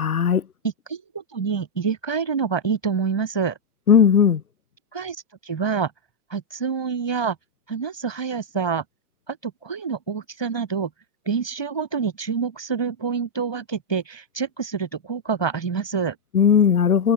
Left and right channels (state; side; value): late; right; 1.2 ms